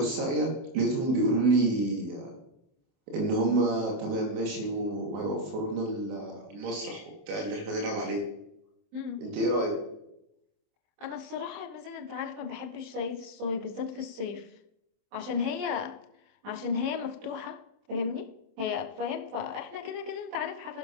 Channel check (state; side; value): late; left; 24 ms